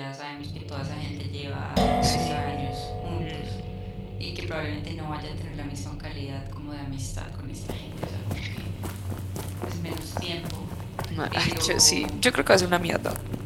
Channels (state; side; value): identical; both; correlation 1.00